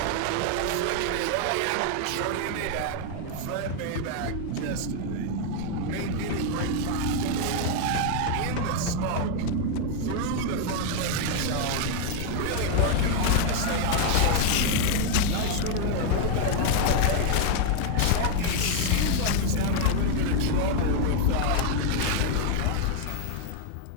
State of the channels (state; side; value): different; both; correlation 0.00